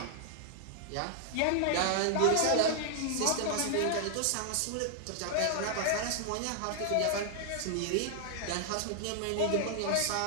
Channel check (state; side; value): different; both; correlation 0.00